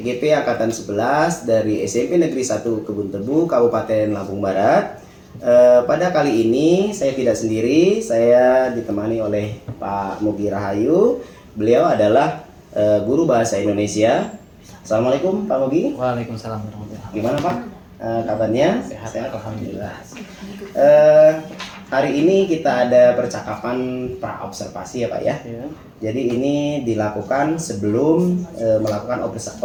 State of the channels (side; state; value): both; identical; correlation 1.00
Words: Angkatan 11 dari SMP Negeri 1 Kebun Tebu, Kabupaten Lampung Barat. Pada kali ini saya tidak sendiri, saya ditemani oleh Pak Mugi Rahayu. Beliau adalah guru bahasa Indonesia. Assalamualaikum Pak Mugi. Waalaikumsalam warahmatullahi wabarakatuh. Gimana Pak? Kabarnya? Sehat, alhamdulillah. Hari ini kita ada percakapan pra-observasi ya Pak ya. Ya. Jadi ini dilakukan sebelum melakukan